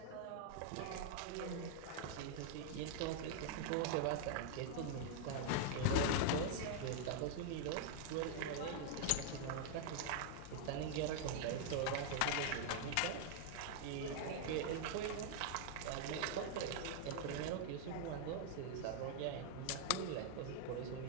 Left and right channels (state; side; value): different; both; correlation 0.00